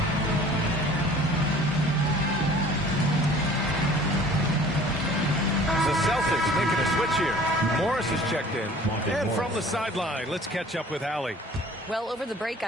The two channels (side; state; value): both; normal; correlation 0.49